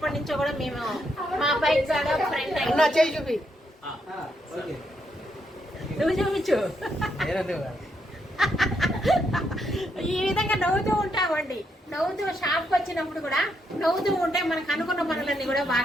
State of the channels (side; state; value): both; normal; correlation 0.78